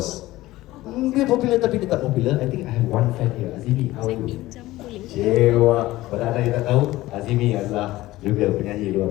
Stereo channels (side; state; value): right; quieter; 17.3 dB